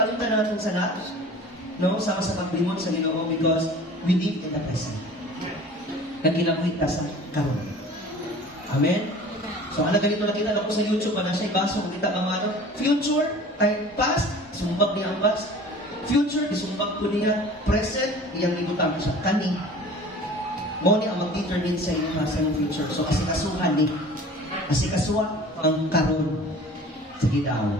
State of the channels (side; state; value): both; normal; correlation 0.44